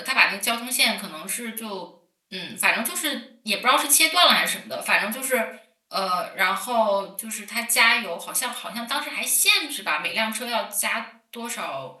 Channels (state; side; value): identical; both; correlation 1.00